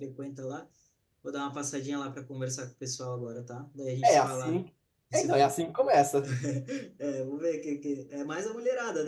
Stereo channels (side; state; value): both; identical; correlation 1.00